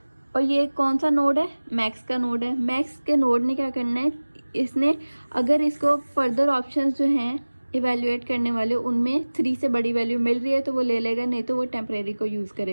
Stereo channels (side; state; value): both; inverted; correlation -1.00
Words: और ये कौन सा नोड है, मैक्स का नोड है। मैक्स के नोड ने क्या करना है, इसने अगर इसको फर्दर ऑप्शंस जो हैं इवेल्युएट करने वाले, उनमें 3 से बड़ी वैल्यू मिल रही है तो वो ले लेगा, नहीं तो वो टेम्परेरी को यूज़